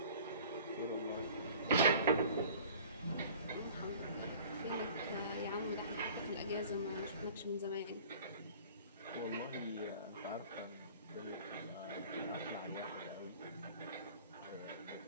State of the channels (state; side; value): inverted; both; correlation -0.47